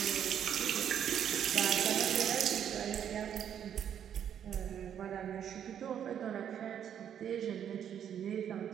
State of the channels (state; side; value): quieter; left; 9.2 dB